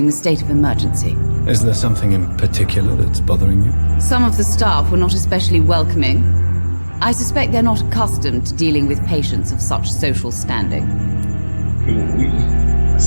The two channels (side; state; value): both; inverted; correlation -1.00